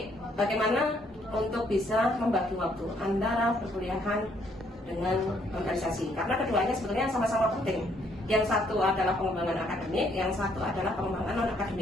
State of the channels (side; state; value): both; normal; correlation 0.68